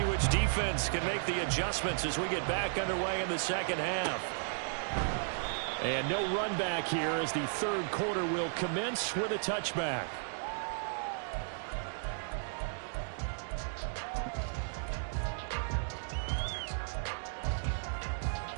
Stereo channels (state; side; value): silent; left; digital silence